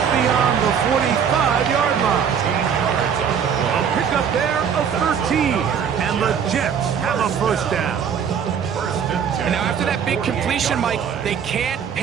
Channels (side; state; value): left; quieter; 7.5 dB